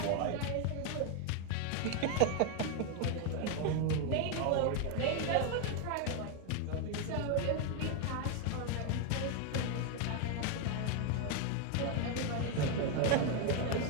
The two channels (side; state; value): both; different; correlation 0.01